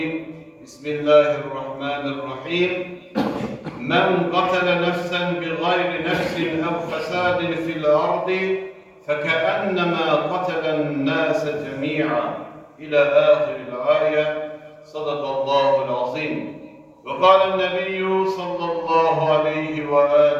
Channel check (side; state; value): both; identical; correlation 1.00